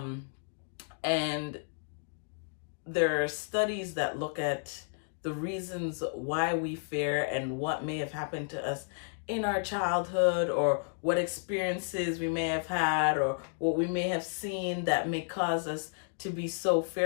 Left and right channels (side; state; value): right; silent; digital silence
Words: there are studies that look at the reasons why we fear and what may have happened to us in our childhood, or what experiences we may have had, or what we may have seen that may cause us to be so